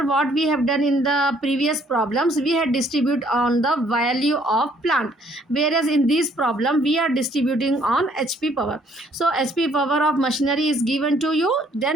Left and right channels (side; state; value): both; normal; correlation 0.63